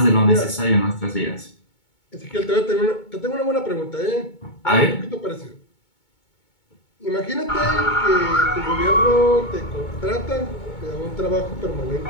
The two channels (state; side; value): late; right; 2.2 ms